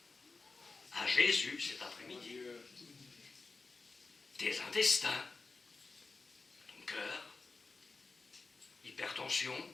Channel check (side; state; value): right; quieter; 4.0 dB